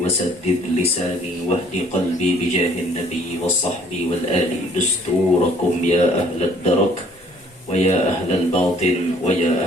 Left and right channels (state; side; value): normal; both; correlation 0.59